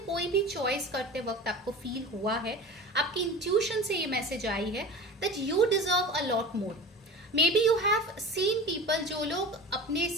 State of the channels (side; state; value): both; normal; correlation 0.34